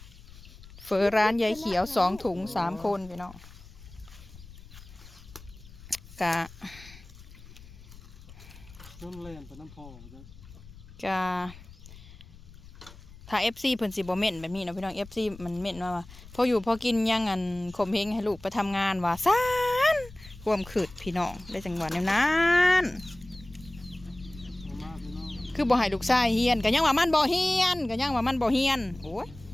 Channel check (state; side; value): noise; left; rumble, 19 dB below the sound